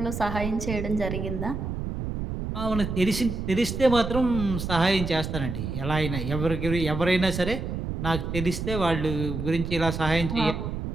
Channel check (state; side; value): noise; right; rumble, 4 dB below the sound